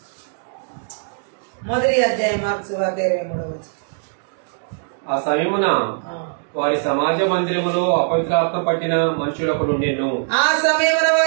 1వ అధ్యాయం మార్క్స్ వార్త 23వ వచనం. ఆ సమయమున వారి సమాజ మందిరములో అపవిత్రాత్మ పట్టిన మనుషులకు నుండెను. ఆ సమయమున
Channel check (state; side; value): silent; left; digital silence